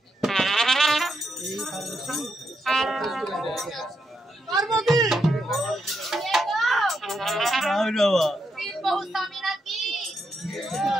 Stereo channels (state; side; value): normal; both; correlation 0.81